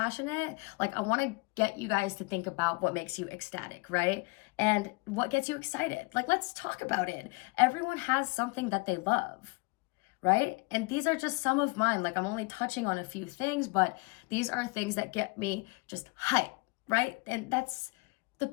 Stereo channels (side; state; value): right; quieter; 28.5 dB